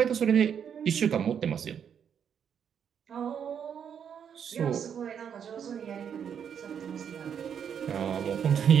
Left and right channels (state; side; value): quieter; left; 8.0 dB